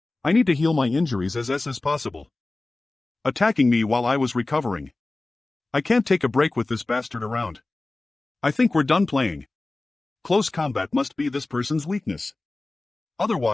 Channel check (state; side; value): quieter; right; 3.1 dB